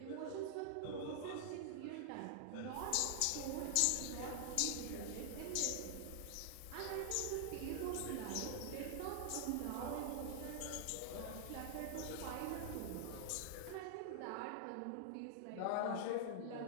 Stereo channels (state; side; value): different; both; correlation 0.00